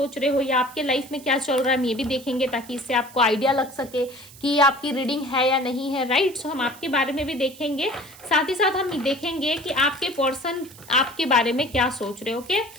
रहे हो या आपके लाइफ में क्या चल रहा है, हम ये भी देखेंगे ताकि इससे आपको आइडिया लग सके कि आपकी रीडिंग है या नहीं है। राइट, सो हम आपके बारे में भी देखेंगे, साथ ही साथ हम देखेंगे कि आपके पर्सन आपके बारे में क्या सोच रहे हैं। ओके,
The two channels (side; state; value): right; noise; hiss, 20 dB below the sound